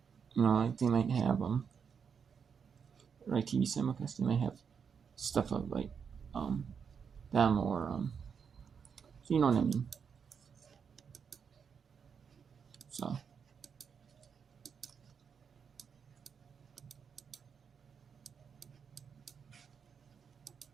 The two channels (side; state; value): left; quieter; 6.6 dB